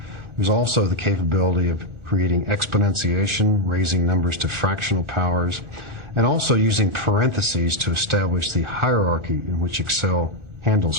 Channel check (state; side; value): late; left; 1.4 ms